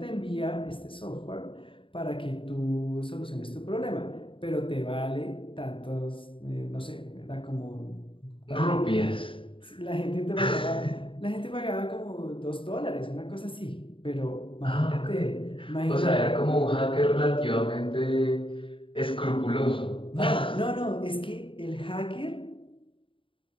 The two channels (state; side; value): late; right; 0.25 ms